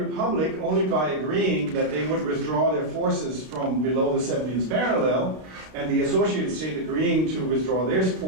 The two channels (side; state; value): left; late; 32 ms